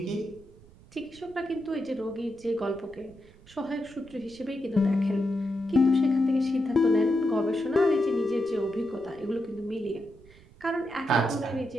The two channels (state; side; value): noise; right; rumble, 24 dB below the sound